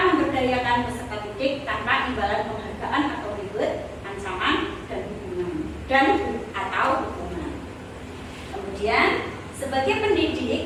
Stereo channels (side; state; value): both; identical; correlation 1.00